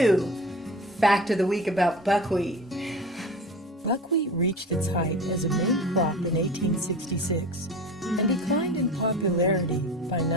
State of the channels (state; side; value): normal; both; correlation 0.35